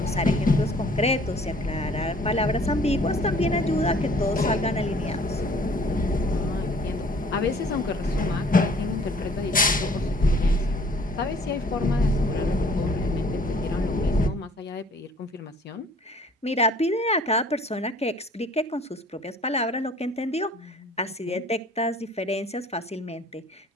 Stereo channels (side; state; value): both; normal; correlation 0.55